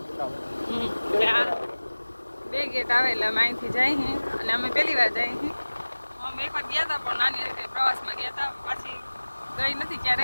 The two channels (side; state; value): both; inverted; correlation -1.00